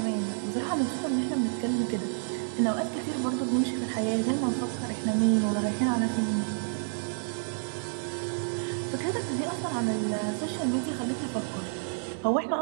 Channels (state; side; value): silent; left; digital silence